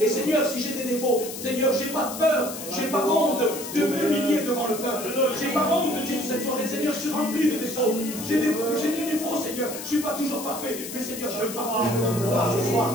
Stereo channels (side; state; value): left; noise; hiss, 9 dB below the sound